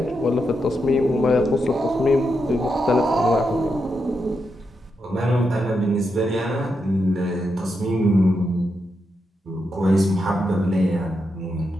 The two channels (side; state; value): both; normal; correlation 0.84